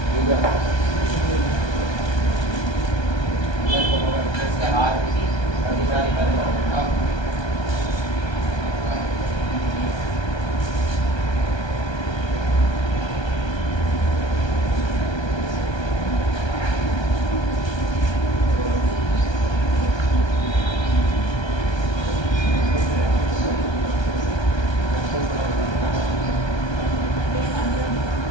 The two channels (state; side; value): late; right; 1.3 ms